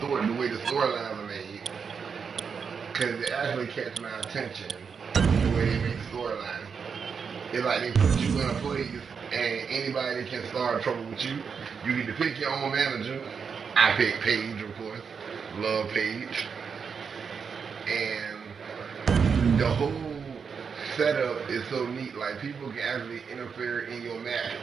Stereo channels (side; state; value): left; quieter; 6.1 dB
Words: the way the storylines are made, because it actually catch my attention, the way they make storylines. It's like they put you in a place, and anybody can start trouble with you. You need to pick your own manager. I pick Paige, of course. Love Paige. And the whole setup is so neat. Like, people can actually interfere in your match